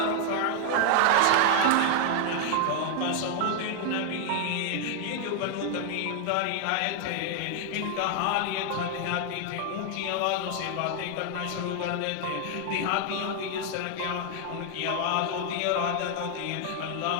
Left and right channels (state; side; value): different; both; correlation 0.00